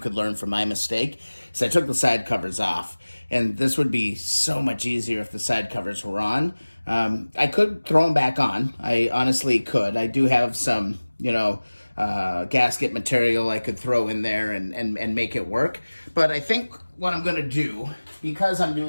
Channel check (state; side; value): inverted; both; correlation -1.00